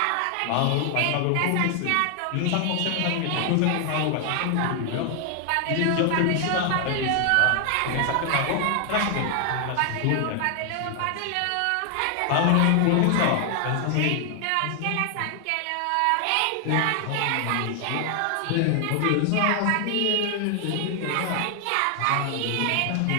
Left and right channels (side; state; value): both; different; correlation 0.00